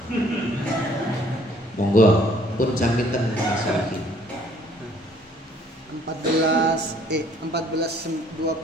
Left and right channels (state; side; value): normal; both; correlation 0.59